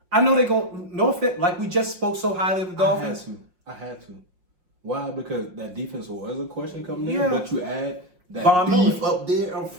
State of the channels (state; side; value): late; left; 5.6 ms